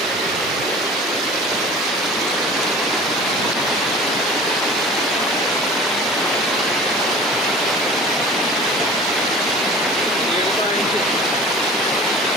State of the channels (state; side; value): normal; both; correlation 0.42